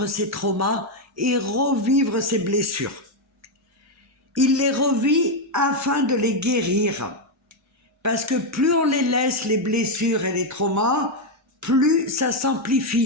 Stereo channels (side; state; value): both; normal; correlation 0.03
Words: ses traumas et revivre ses blessures. Il les revit afin de les guérir. Parce que plus on les laisse, les blessures et les traumas, plus ça